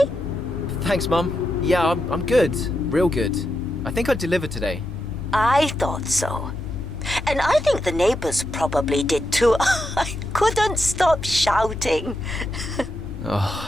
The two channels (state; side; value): normal; both; correlation 0.85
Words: Thanks, Mum. Yeah, I'm good. Real good. I think I delivered today. I thought so. And I think the neighbors probably did too. I couldn't stop shouting.